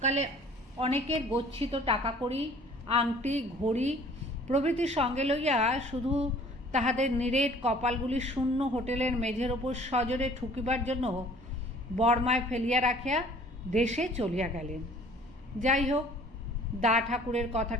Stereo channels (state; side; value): normal; both; correlation 0.52